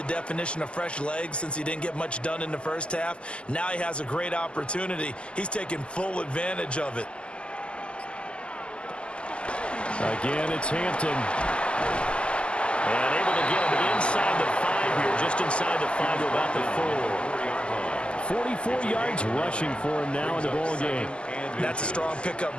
definition of fresh legs since he didn't get much done in the first half? Now he has a great opportunity. He's taking full advantage of it. Again, it's Hampton. And able to get him inside the 5 here, just inside the 5 to about the 4. 44 yards rushing for him now in the ball game. That's a strong pickup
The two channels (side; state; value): right; late; 0.052 ms